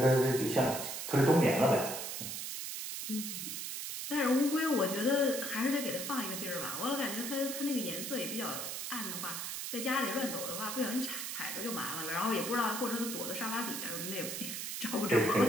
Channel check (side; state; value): right; noise; hiss, 5 dB below the sound